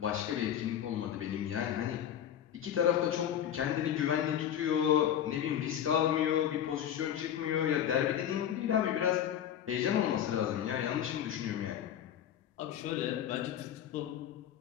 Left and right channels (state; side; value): quieter; right; 10.1 dB